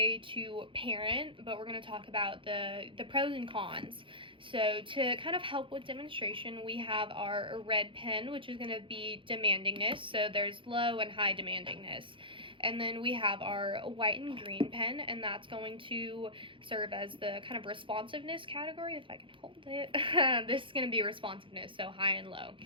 to parent, but we're going to talk about the pros and cons. So to kind of help with demonstration, we have our red pen, which is going to be demandingness. So there's low and high demandingness. And then we have our white and green pen, and that's going to serve as the kind of responsiveness category, if I can hold it. This is going to be responsiveness, so high and low.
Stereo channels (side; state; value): left; late; 0.25 ms